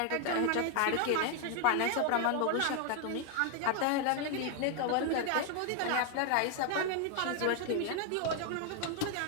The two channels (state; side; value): different; both; correlation 0.00